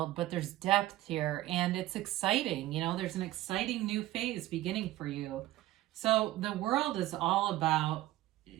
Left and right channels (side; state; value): left; quieter; 15.9 dB